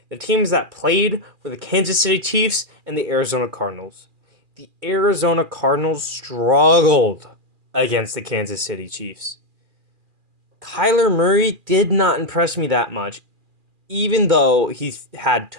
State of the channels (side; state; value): left; late; 2.4 ms